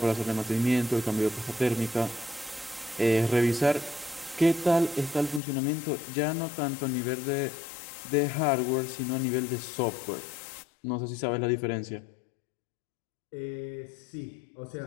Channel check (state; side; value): drops out; right; at 5.4 s